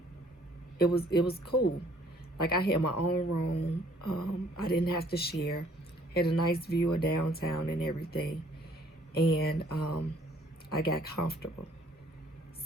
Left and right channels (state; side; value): normal; both; correlation 0.60